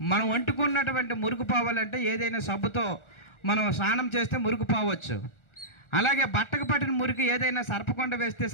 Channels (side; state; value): right; late; 1.4 ms